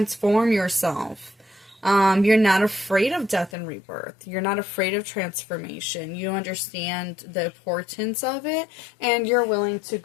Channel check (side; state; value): right; drops out; at 3.5 s